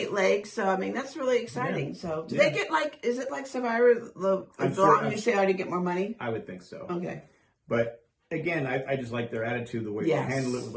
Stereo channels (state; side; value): identical; both; correlation 1.00